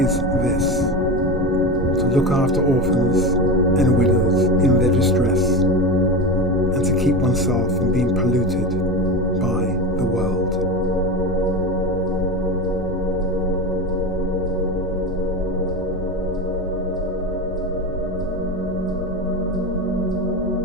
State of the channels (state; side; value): normal; both; correlation 0.22